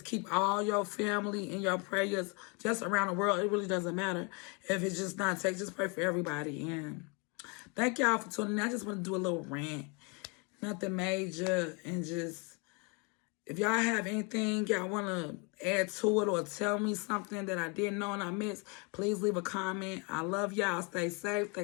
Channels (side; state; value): right; quieter; 32.5 dB